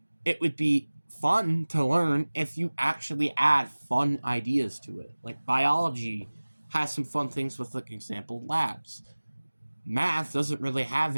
It would be fun to learn if you actually add fun ideas to it. Like biology has some fun things with, like, example labs. Math doesn't really have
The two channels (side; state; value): both; inverted; correlation -1.00